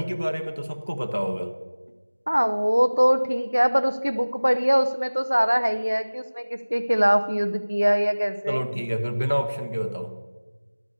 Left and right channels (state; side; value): inverted; both; correlation -1.00